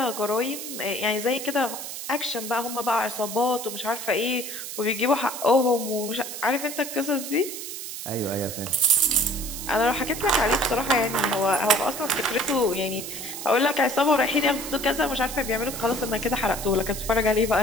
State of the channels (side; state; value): right; noise; hiss, 8 dB below the sound